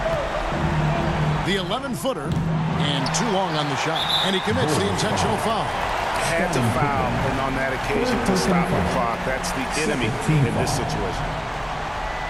The 11-footer and too long on the shot. And he commits the intentional foul. Had to foul, and on that occasion to stop the clock. That's the enemy in this situation.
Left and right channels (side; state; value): both; identical; correlation 1.00